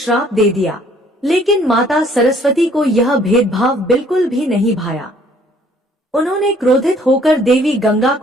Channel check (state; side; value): normal; both; correlation 0.60